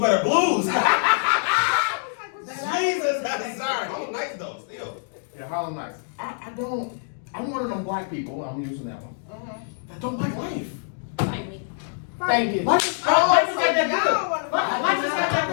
Blues. Jesus, I'm sorry. Harlem Nights though, still. Yeah, Harlem Nights. I'm one of them black people, I'm using that one, that don't like life. Like me. Thank you. Life is Oh, not so that good. y'all want to Life is not that I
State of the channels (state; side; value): silent; right; digital silence